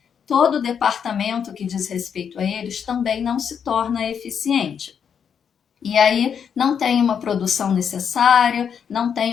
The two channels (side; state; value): right; quieter; 7.5 dB